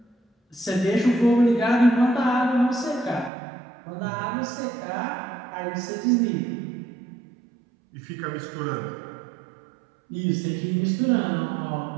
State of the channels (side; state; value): left; drops out; at 3.3 s